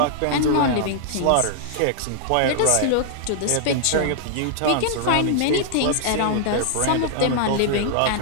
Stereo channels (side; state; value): both; different; correlation -0.01